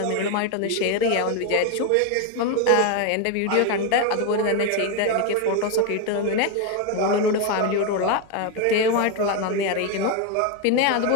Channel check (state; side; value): different; both; correlation 0.02